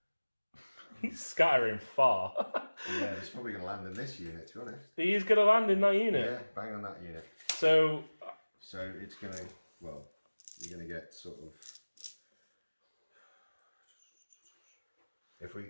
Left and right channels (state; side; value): inverted; both; correlation -1.00